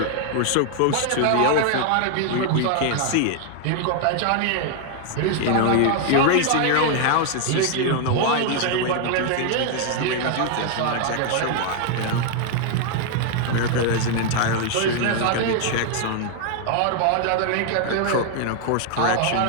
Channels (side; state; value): both; different; correlation 0.00